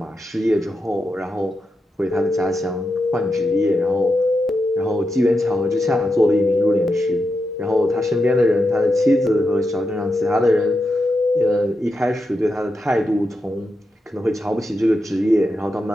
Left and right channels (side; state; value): both; normal; correlation 0.87